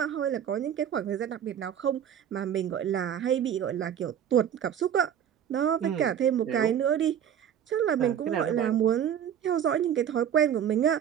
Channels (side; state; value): left; quieter; 9.3 dB